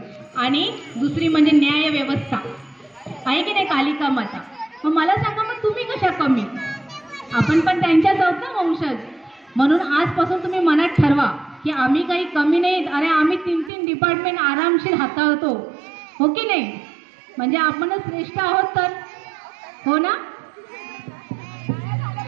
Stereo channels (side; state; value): left; drops out; at 13.7 s